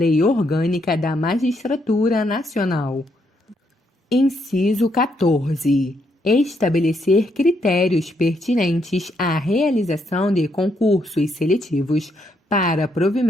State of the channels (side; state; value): both; normal; correlation 0.76